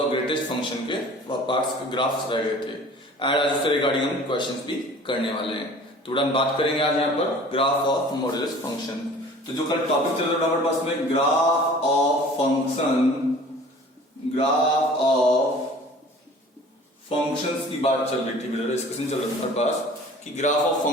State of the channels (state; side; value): normal; both; correlation 0.46